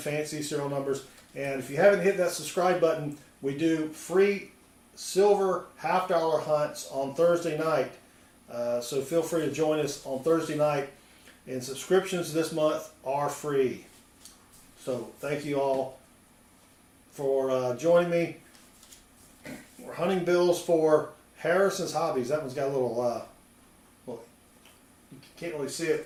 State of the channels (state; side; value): identical; both; correlation 1.00